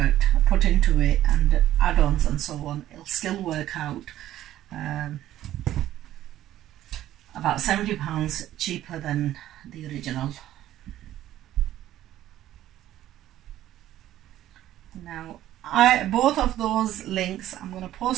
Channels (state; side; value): quieter; left; 13.3 dB